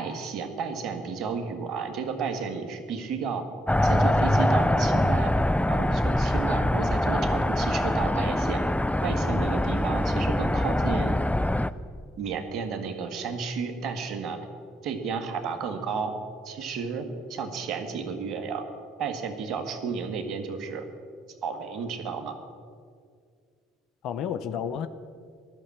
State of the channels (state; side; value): normal; both; correlation 0.81